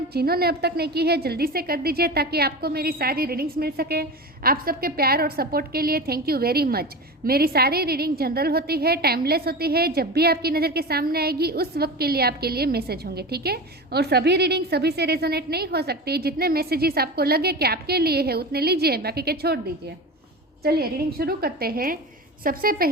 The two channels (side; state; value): both; normal; correlation 0.28